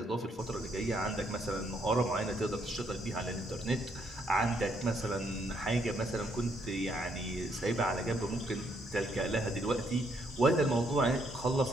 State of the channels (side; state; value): both; normal; correlation 0.72